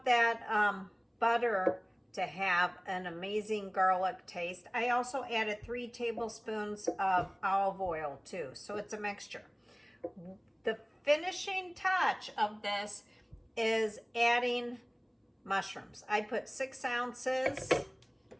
that butter to have an amazing garlic taste. I also added 3 tablespoons of olive oil too, so it's a mixture. The finishing touch of this is adding mushrooms. I put 6 ounces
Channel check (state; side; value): identical; both; correlation 1.00